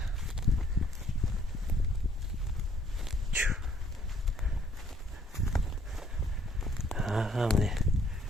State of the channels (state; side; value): normal; both; correlation 0.63